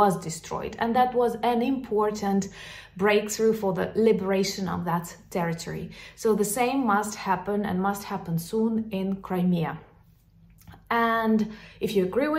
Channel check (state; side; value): identical; both; correlation 1.00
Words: destroyed, and that was an important breakthrough for the liberation of that territory. So the same must happen, and must happen soon, in Crimea. And if you agree